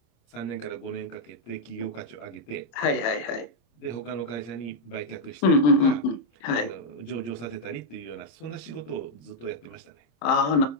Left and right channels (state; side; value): late; right; 27 ms